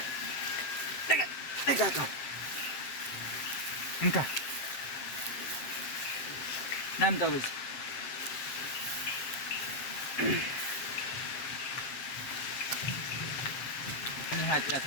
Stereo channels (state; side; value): late; right; 7.9 ms